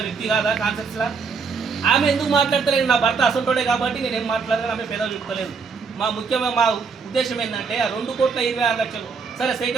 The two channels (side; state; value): left; quieter; 5.3 dB